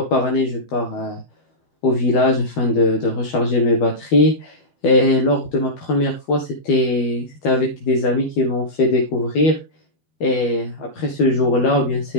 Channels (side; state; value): right; late; 12 ms